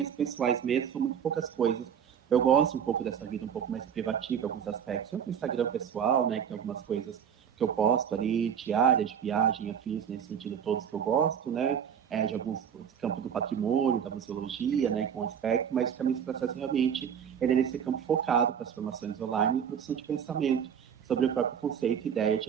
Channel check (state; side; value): quieter; left; 8.1 dB